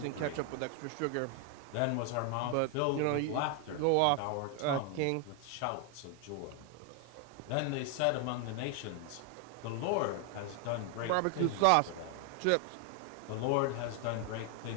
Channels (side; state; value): both; different; correlation 0.00